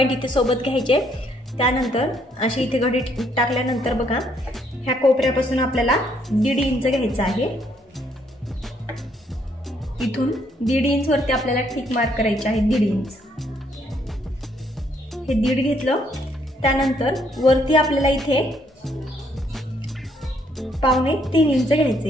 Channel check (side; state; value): both; normal; correlation 0.70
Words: इथे सोबत घ्यायचे। त्यानंतर अशी इथे घडी टाकल्यानंतर बघा ह्या कोपऱ्यापासून आपल्याला 1.5 इंच घ्यायचं आहे। इथून 1.5 इंच वरती आपल्याला टिक मार्क करायची आहे। 1.5 इंच हे 1.5 घेतलं। त्यानंतर वरती आपल्याला इथे 2.25 इंच